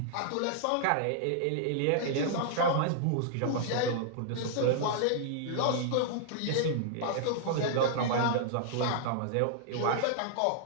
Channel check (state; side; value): different; both; correlation -0.01